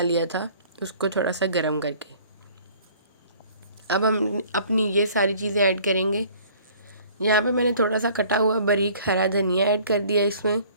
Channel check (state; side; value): inverted; both; correlation -0.53